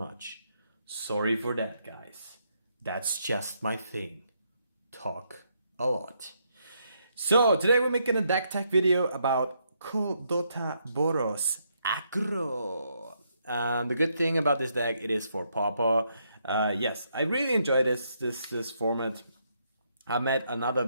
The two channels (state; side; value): inverted; both; correlation -0.76